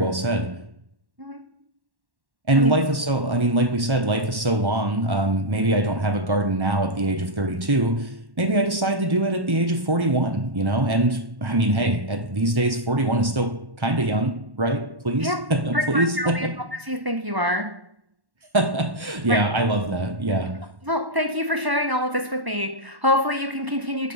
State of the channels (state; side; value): late; left; 1.1 ms